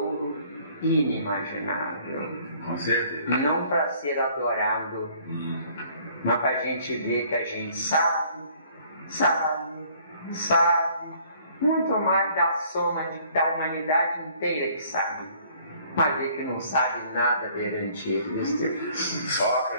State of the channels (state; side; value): inverted; both; correlation -0.58